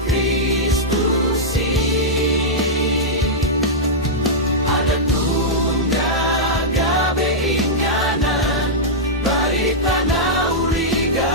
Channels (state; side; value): normal; both; correlation -0.09